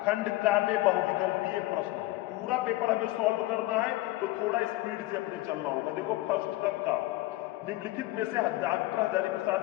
खंड का में बहुविकल्पीय प्रश्न है। पूरा पेपर हमें सॉल्व करना है, तो थोड़ा स्पीड से अपने चलना होगा। देखो फर्स्ट का निम्नलिखित में से डॉक्टर हजारी प्रसाद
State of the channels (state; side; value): quieter; right; 17.9 dB